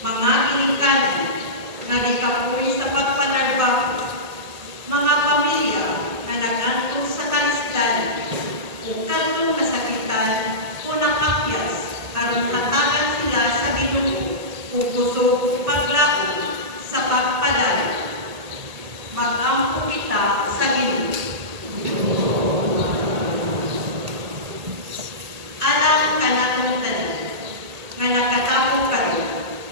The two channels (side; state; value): left; late; 1.8 ms